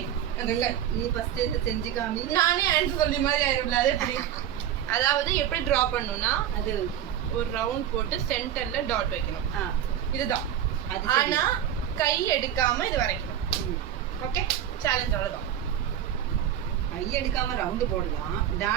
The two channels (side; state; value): left; quieter; 10.3 dB